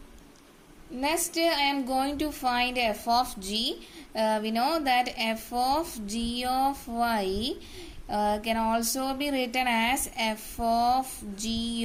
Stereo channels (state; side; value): identical; both; correlation 1.00